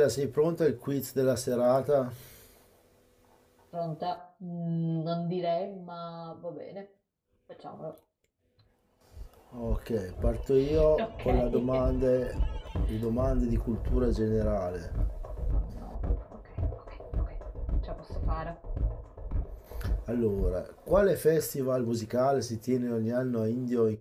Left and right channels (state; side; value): identical; both; correlation 1.00